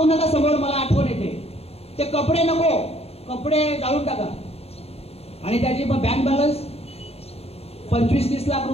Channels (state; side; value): late; right; 0.29 ms